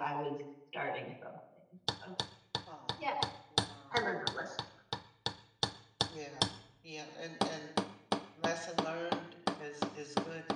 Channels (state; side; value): identical; both; correlation 1.00